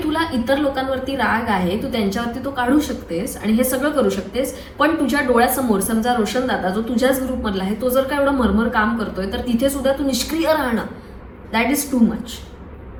तुला इतर लोकांवरती राग आहे, तू त्यांच्यावरती तो काढू शकतेस आणि हे सगळं करू शकतेस, पण तुझ्या डोळ्यासमोर समजा रोशन दादा जो तुझ्याच ग्रुपमधला आहे तो जर का एवढं मरमर काम करतोय तर तिथे सुद्धा तू निष्क्रिय राहणं दॅट इज टू मच.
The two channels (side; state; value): both; identical; correlation 1.00